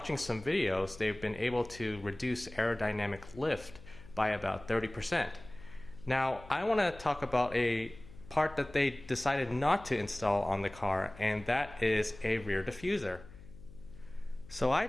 some videos, they've been able to reduce aerodynamic lift by about 30%. Now, I want to talk about a part that they decided not to install on the car, and that is a rear diffuser. So I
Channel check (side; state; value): left; noise; hum, 19 dB below the sound